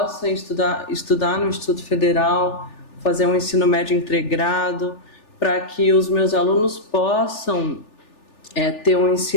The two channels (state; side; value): late; right; 3.4 ms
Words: estudar no Instituto Federal, fazer um ensino médio integrado, para que os meus alunos possam ter um